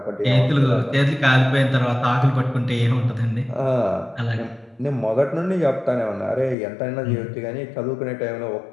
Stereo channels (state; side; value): drops out; right; at 6.6 s